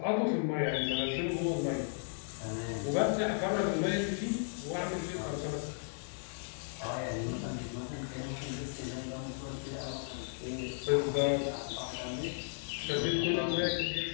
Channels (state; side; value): silent; right; digital silence